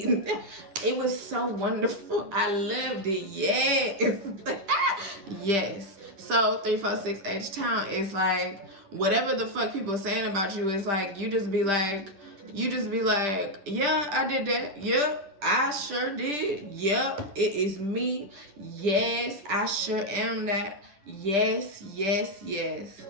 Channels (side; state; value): left; late; 10 ms